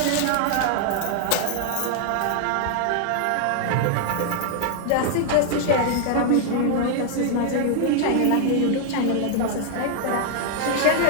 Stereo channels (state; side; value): different; both; correlation 0.00